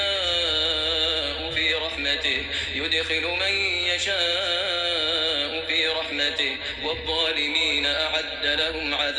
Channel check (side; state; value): both; identical; correlation 1.00